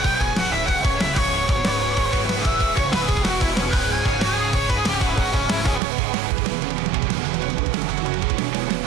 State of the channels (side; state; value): left; drops out; at 5.8 s